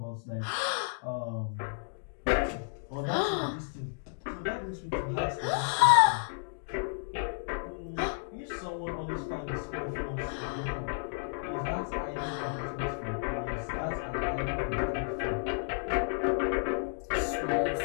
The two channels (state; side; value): silent; right; digital silence